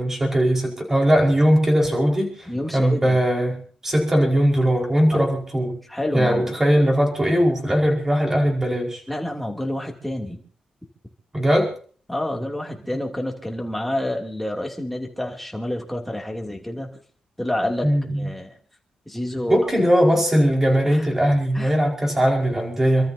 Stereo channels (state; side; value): normal; both; correlation 0.96